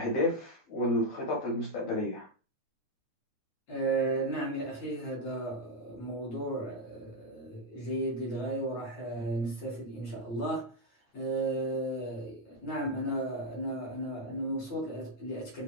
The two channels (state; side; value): late; right; 8.8 ms